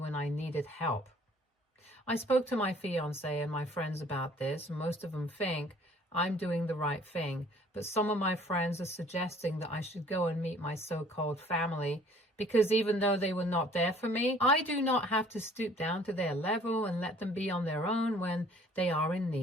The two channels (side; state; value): both; normal; correlation 0.55